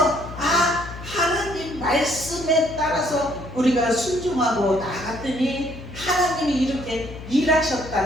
하나님 말씀에 따라서 우리가 순종하고 나갔더니 하나님이 이렇게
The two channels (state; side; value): noise; left; hum, 12 dB below the sound